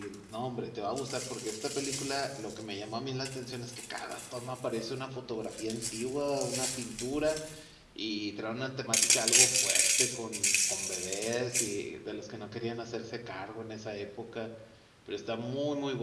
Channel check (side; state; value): both; identical; correlation 1.00